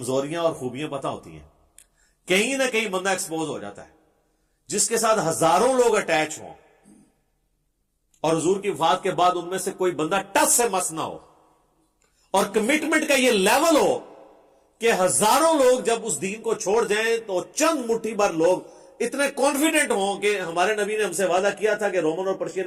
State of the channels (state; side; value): identical; both; correlation 1.00